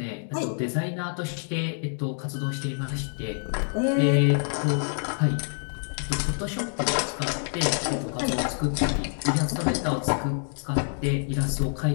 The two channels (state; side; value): silent; right; digital silence